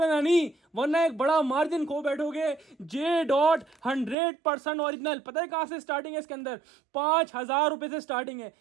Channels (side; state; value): left; drops out; at 4.2 s